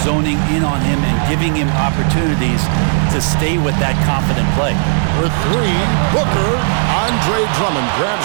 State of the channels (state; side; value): silent; left; 67 dB below the other